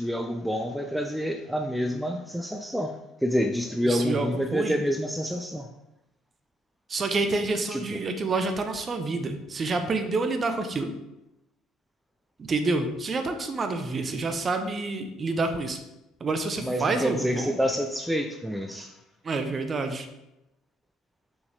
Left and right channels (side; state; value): both; normal; correlation 0.80